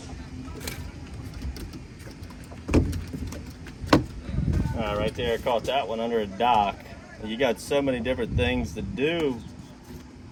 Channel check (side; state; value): both; identical; correlation 1.00